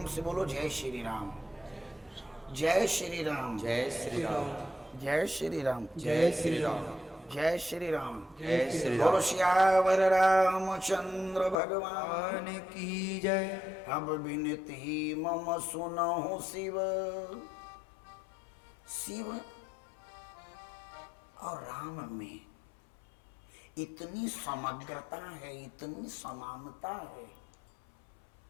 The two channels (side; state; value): right; drops out; at 11.6 s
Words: से बोलो जय श्री राम, जय श्री राम, जय श्री राम, जय श्री राम, जय श्री राम, जय श्री राम, जय श्री बोलो राम। श्यावर रामचंद्र भगवान भगवान की जय। अब विनती मम सुनहु शिव। शिव और राम में इतनी समग्रता है, इतनी समानता है,